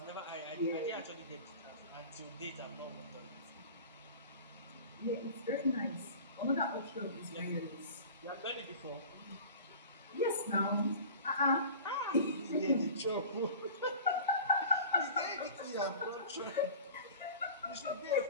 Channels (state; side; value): inverted; both; correlation -0.40